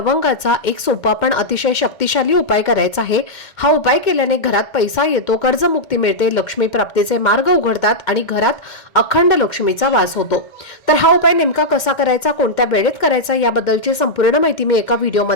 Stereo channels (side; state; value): right; late; 2.1 ms